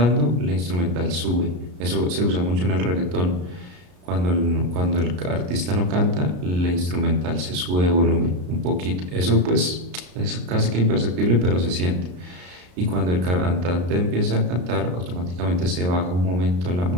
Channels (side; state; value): left; late; 33 ms